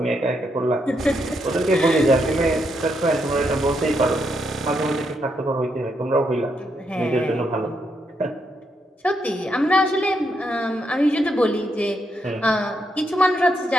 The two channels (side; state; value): both; normal; correlation 0.79